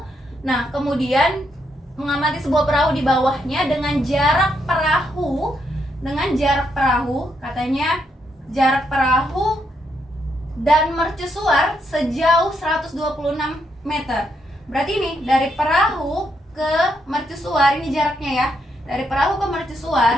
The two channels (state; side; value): normal; both; correlation 0.78